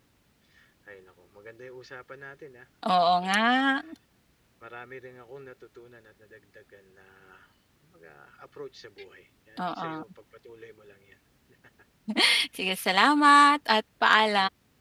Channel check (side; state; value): both; identical; correlation 1.00